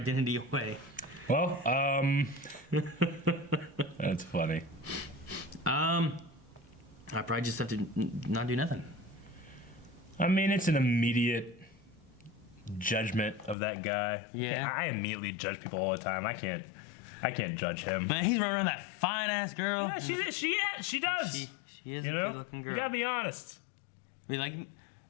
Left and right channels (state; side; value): drops out; right; at 13.6 s